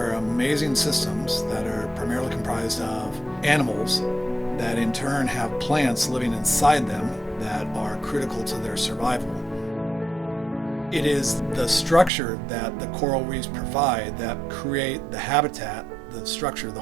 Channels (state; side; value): drops out; left; at 12.1 s